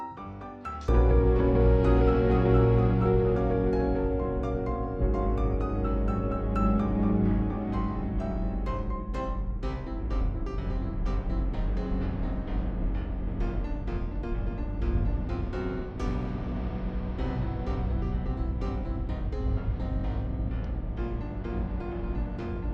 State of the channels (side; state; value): both; identical; correlation 1.00